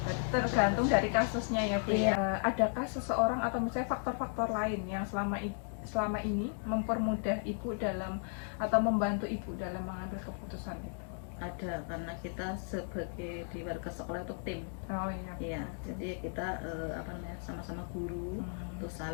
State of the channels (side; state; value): right; silent; 54 dB below the other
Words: Tergantung dari kasusnya ya Bu. Iya. Adakah seseorang atau misalnya faktor-faktor lain yang selama ini mempermudah ibu dalam atau membantu ibu dalam mengambil keputusan itu? Ada, karena kita sebagai di warga sekolah itu tim. Oh iya. Iya, jadi kita sama-sama guru, terus